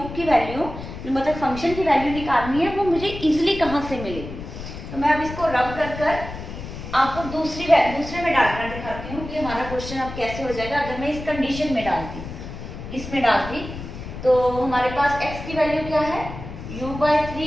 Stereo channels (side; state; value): left; noise; rumble, 10 dB below the sound